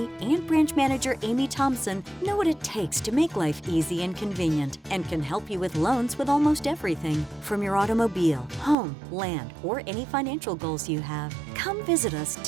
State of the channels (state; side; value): drops out; left; at 8.8 s